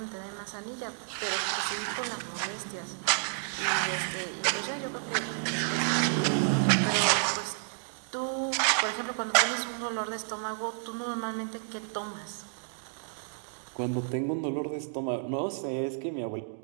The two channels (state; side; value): silent; left; digital silence